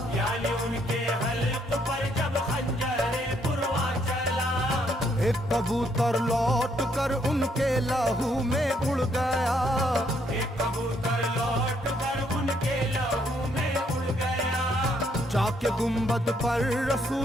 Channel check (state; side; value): normal; both; correlation 0.71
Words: यानी उनके हल्क पर जब खंजरे पुरवा चला, एक कबूतर लौट कर उनके लहू में उड़ गया, एक कबूतर लौट कर उनके लहू में उड़ गया। जाके गुंबद पर